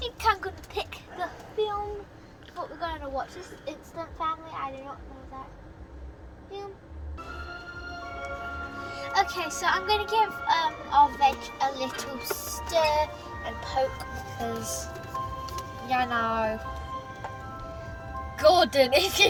I'm gonna pick the film. What we're going to watch. This is Instant Family. I do not know that film. Okay, so I'm going to give our veg a little stir and poke because, you know, Gordon, if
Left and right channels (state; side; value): identical; both; correlation 1.00